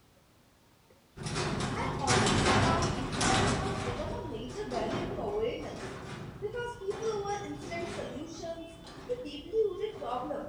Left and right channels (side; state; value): both; identical; correlation 1.00